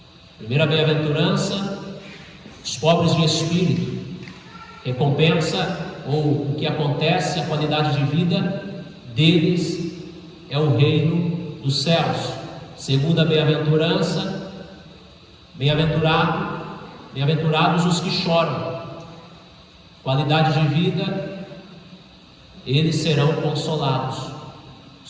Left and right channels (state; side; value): identical; both; correlation 1.00